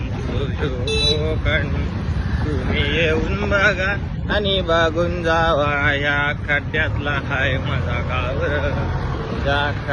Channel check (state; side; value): identical; both; correlation 1.00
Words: कोकण, तुम्ही येऊन बघा आणि बघून जावा. या खड्ड्यातला हाय माझा गावर, या